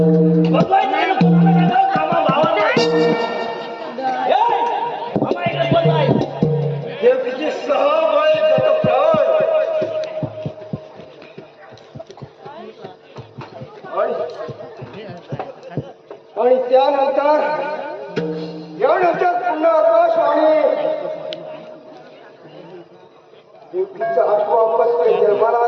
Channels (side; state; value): both; identical; correlation 1.00